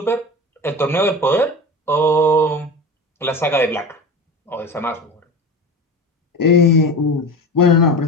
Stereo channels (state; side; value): normal; both; correlation 0.30